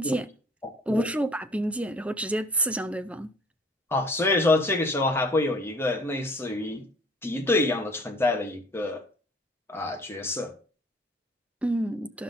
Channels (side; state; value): both; normal; correlation 0.53